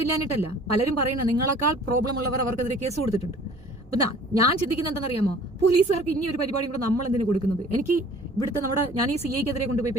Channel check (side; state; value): both; normal; correlation 0.50